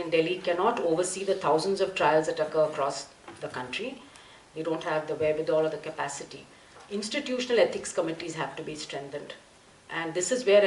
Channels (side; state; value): both; identical; correlation 1.00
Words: Delhi cannot oversee the thousands of trials that occur across the country. They don't have the wherewithal or the capacity. Institutional ethics committees have to be strengthened. And this is where